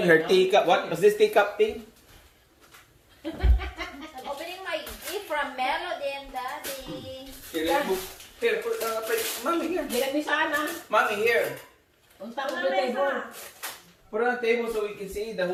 her teacup. What was this teacup thing? I'm opening my gift from Melody and Daddy. Here, put, mommy here. Bilang ni sana. Mommy here. Unta ko the table. Put it on the table so we can see the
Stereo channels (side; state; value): both; identical; correlation 1.00